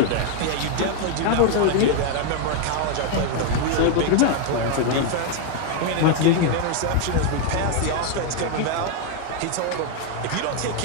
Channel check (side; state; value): both; different; correlation 0.01